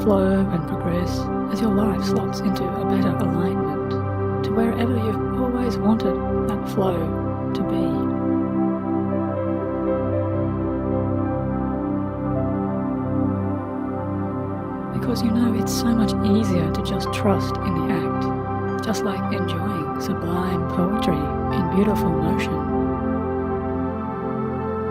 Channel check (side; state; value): both; identical; correlation 1.00